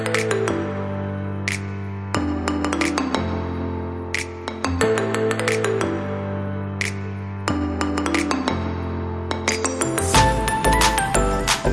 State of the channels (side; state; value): both; identical; correlation 1.00